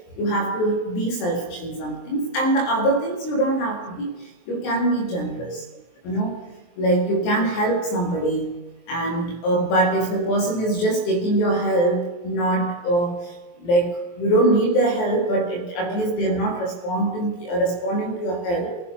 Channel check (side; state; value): right; late; 23 ms